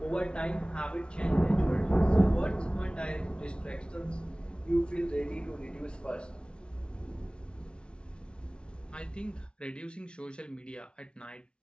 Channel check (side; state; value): right; late; 0.057 ms